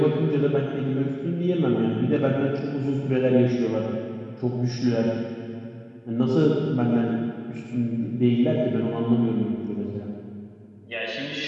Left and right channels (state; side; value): identical; both; correlation 1.00